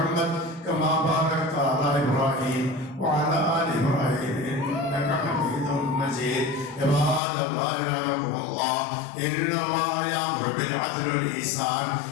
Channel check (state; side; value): drops out; right; at 7.2 s